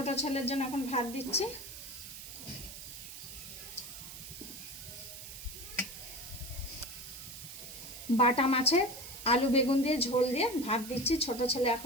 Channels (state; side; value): noise; right; hiss, 12 dB below the sound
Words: ছেলের জন্য এখন ভাত দিচ্ছি। বাটা মাছের আলু বেগুন দিয়ে ঝোল দিয়ে ভাত দিচ্ছি। ছোট ছেলে